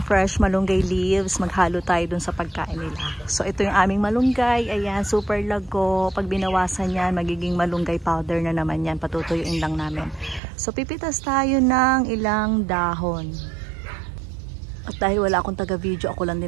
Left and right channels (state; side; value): drops out; left; at 10.4 s